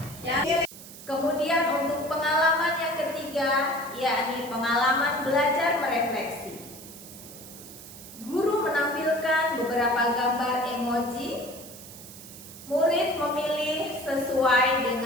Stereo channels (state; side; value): noise; right; hiss, 16 dB below the sound